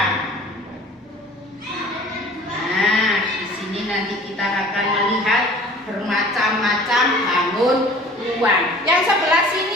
Nah, di sini nanti kita akan melihat bermacam-macam bangun ruang. Yang sebelah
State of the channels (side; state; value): both; normal; correlation 0.47